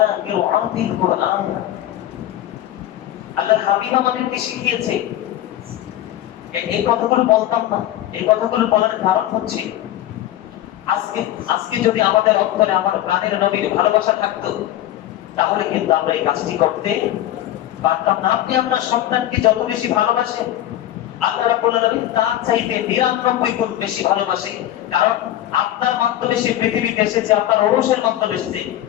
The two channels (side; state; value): right; quieter; 13.1 dB